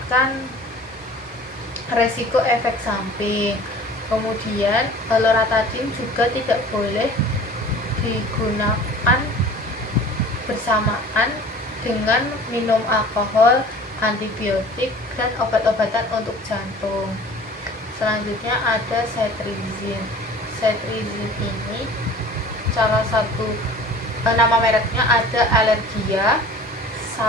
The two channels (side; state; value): both; normal; correlation 0.45